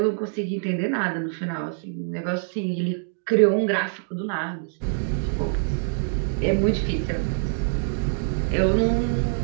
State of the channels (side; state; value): left; silent; digital silence